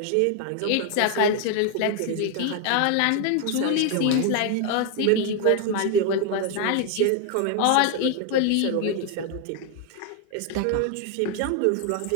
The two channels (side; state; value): both; different; correlation 0.00